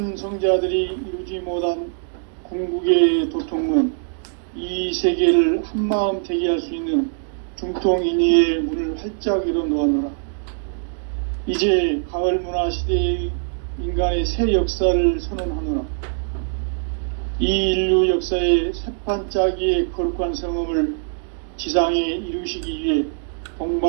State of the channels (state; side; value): silent; left; digital silence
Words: 이루지 못한 궁극의 도통은 이 세계를 한마음 되게 할 수 있는 중통인의의 문을 활짝 열어놓아노라. 이제 가을 문화 시대의 인간의 새 역사를 선언하노라. 이 인류 역사의 새판짜기의 거룩한 성음을 지상에 이루시기 위해